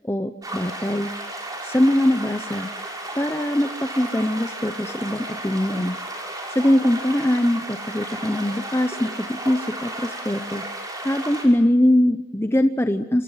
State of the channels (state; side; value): normal; both; correlation 0.90